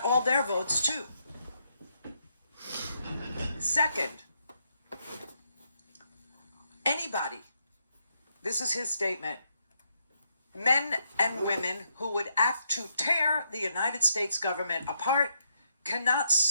all their votes too. Second, anybody, this is his statement, men and women who would act to tear the United States government apart cannot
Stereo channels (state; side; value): inverted; both; correlation -0.78